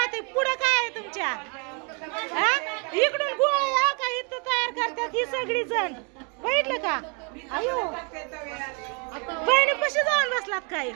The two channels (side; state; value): left; quieter; 35.0 dB